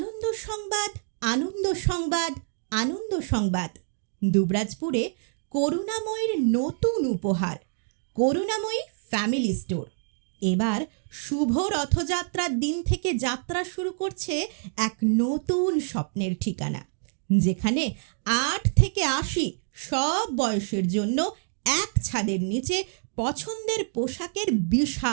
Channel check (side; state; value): left; silent; digital silence